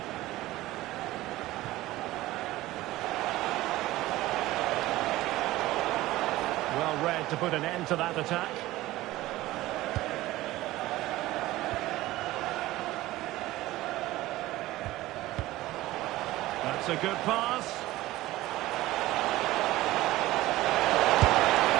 Well read to put an end to that attack. That's a good pass.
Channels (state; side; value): quieter; left; 17.1 dB